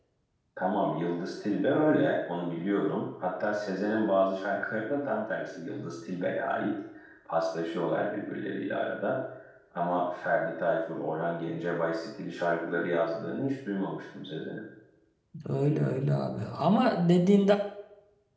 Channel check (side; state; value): both; identical; correlation 1.00